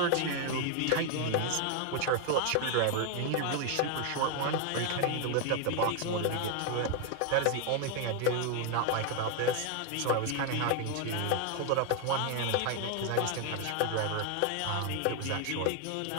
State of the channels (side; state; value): both; different; correlation 0.01